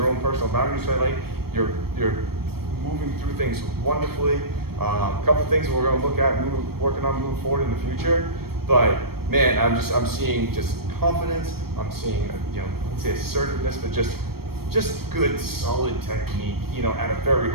own personal boundaries. So you're moving through things wonderfully. A couple things we're going to look at, working on moving forward in the future. But man, I'm seeing just confidence. I'm seeing, let's say assertiveness, but just good, solid technique, at a very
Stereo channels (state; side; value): late; left; 0.94 ms